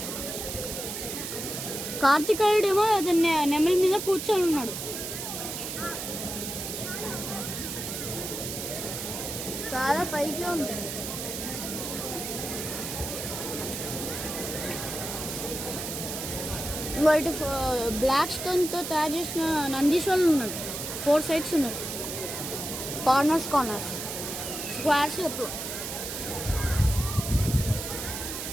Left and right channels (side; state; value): right; noise; hiss, 6 dB below the sound